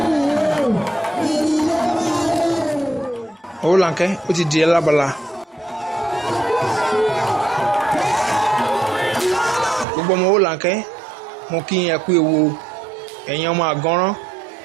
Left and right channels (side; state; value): left; drops out; at 9.9 s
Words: Owolanke ó ti di alábala. Gbogbo ọmọ Owolanke mo kí yín ẹ kú ewu, ẹ̀yin ọmọ àgọ́rán